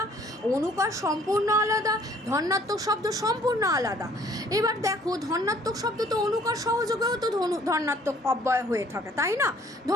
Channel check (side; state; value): both; normal; correlation 0.58